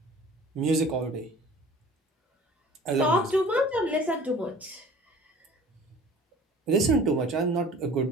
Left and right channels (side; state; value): both; normal; correlation 0.46